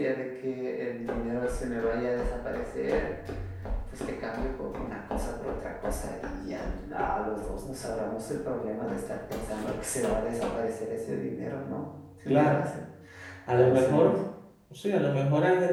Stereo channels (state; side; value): identical; both; correlation 1.00